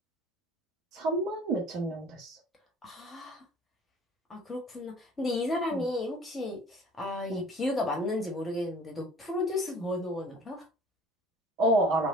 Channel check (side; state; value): both; normal; correlation 0.49